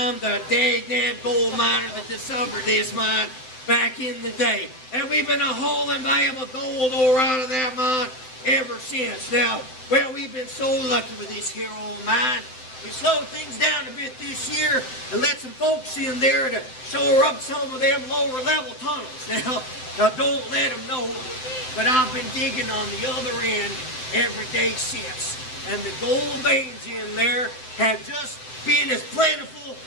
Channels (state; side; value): late; right; 7.8 ms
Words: the dag gold miner that discovered this mine back in the day. And we've been hauling valuable gold ore out of that mine ever since. Now, well, we've been so lucky with this here old mine. We slowed things down a bit this year and let some folks in there to shore up some of them lower level tunnels. Now don't let them know, but I've been digging on the other end every day since. And the gold veins in there have just been as plentiful